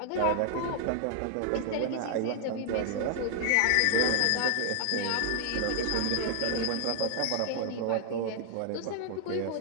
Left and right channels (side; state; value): both; different; correlation 0.00